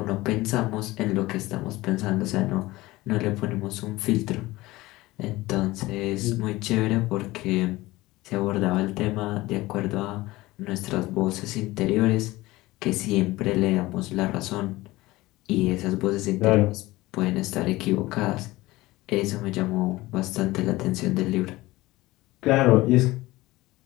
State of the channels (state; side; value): quieter; right; 19.2 dB